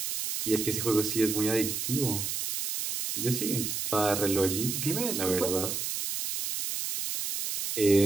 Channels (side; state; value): right; noise; hiss, 3 dB below the sound